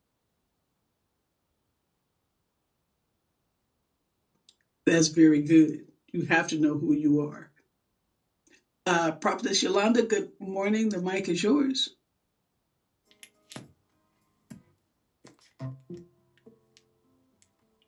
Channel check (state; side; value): identical; both; correlation 1.00